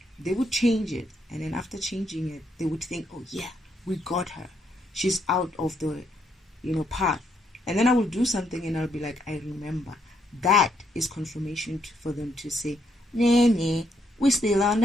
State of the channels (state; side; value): normal; both; correlation 0.74